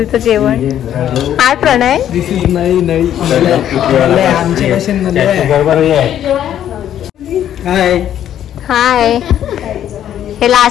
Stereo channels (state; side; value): quieter; right; 10.7 dB